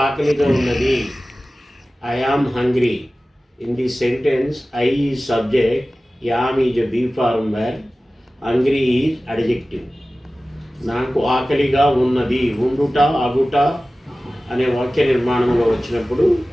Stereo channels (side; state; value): both; normal; correlation 0.96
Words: ఆకలిగా ఉన్నది. I am hungry. In this sentence, I is subject, am is a be form verb, hungry is adjective. నాకు ఆకలిగా ఉన్నది, ఉండుట, అగుట అనే వాక్య నిర్మాణంలో వచ్చినప్పుడు